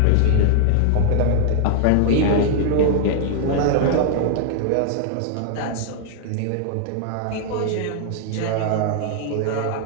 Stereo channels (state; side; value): different; both; correlation -0.01